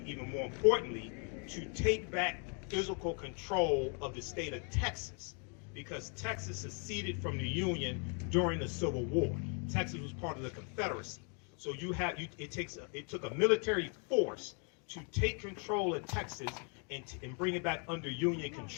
even more importantly, to take back physical control of the state of Texas, because Texas seceded from the Union during the Civil War. Texas was part of the Confederacy. So it took a military force to take control of Texas and bring it back under Union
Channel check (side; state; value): right; quieter; 38.9 dB